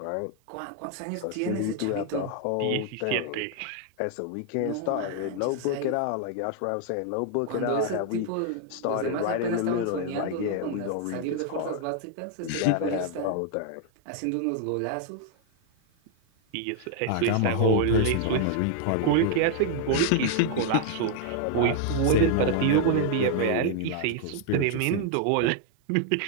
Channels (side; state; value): both; different; correlation 0.00